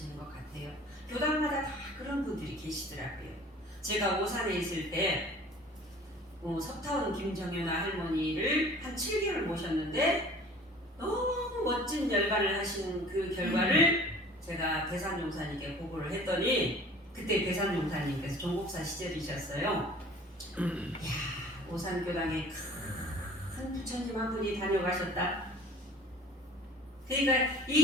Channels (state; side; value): normal; both; correlation 0.48